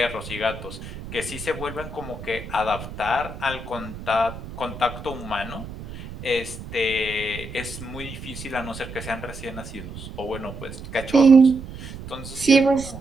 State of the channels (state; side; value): noise; right; rumble, 12 dB below the sound